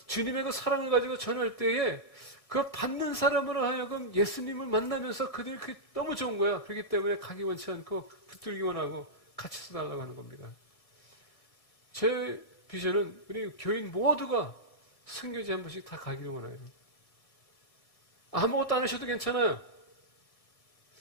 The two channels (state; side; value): late; right; 1.6 ms